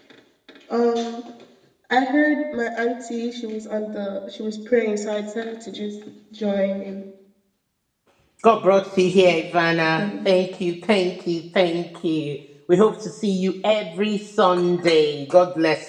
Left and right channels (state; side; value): identical; both; correlation 1.00